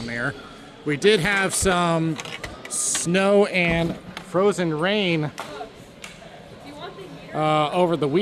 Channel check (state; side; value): identical; both; correlation 1.00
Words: there. We did have some snow and frozen rain over the